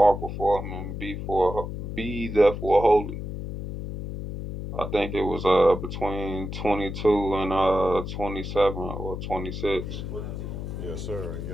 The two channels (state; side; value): noise; left; hum, 6 dB below the sound